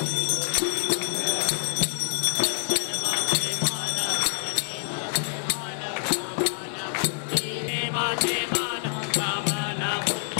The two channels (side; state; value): right; silent; 61 dB below the other